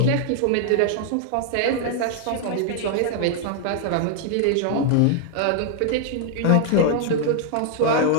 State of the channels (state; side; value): different; both; correlation 0.00